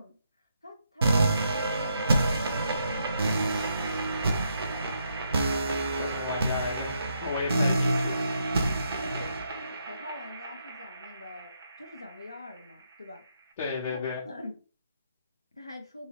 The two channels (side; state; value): both; inverted; correlation -0.78